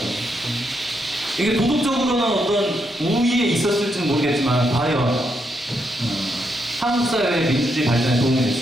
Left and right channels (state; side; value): normal; both; correlation 0.79